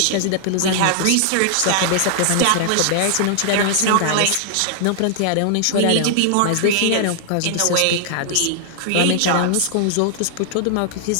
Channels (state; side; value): different; both; correlation -0.01